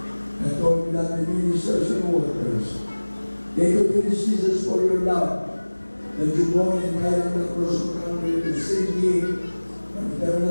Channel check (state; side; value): inverted; both; correlation -1.00